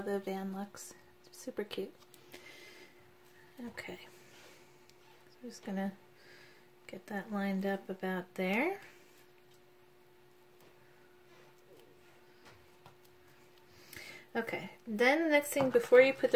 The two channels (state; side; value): identical; both; correlation 1.00